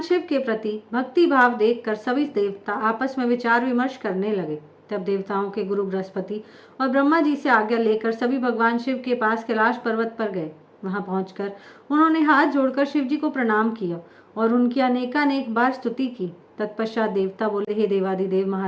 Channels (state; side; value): identical; both; correlation 1.00